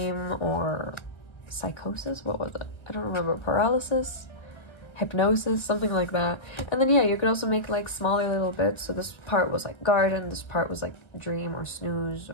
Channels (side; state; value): right; late; 1.6 ms